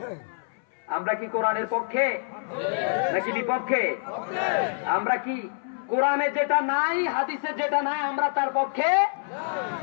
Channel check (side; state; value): right; silent; 61 dB below the other